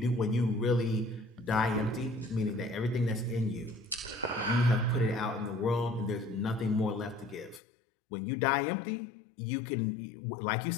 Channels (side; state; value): right; drops out; at 7.6 s